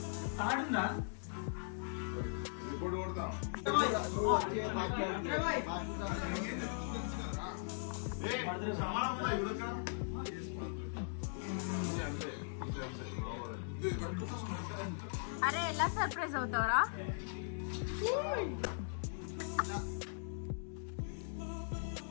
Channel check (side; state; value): right; silent; digital silence